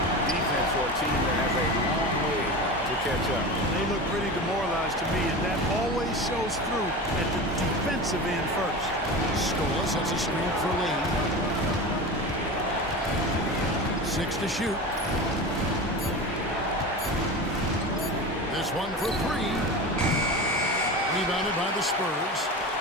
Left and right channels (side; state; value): both; normal; correlation 0.28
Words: defense for a team that has a long way to catch up. They look pretty demoralized to me, and that always shows through at the defensive end first. Scola sets a screen for Lee. 6 to shoot. This one for 3. Rebounded by the Spurs.